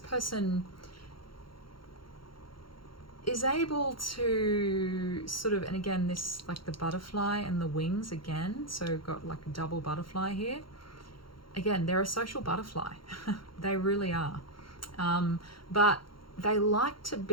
is able to sort of, and again, this like the butterfly and the wings again, so got like a double butterfly here. Again, they're a social butterfly. They really are. But they like to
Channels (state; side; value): late; right; 0.73 ms